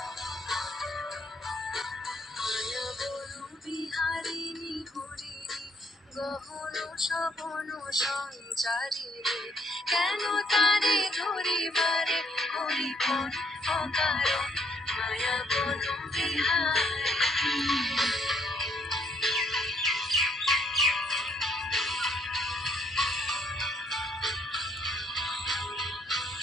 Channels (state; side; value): normal; both; correlation 0.67